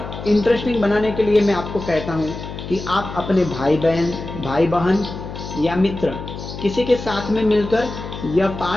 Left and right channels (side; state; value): left; noise; hum, 9 dB below the sound